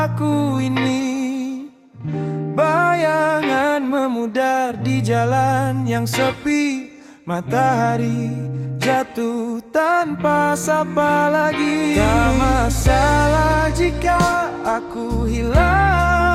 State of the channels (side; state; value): both; identical; correlation 1.00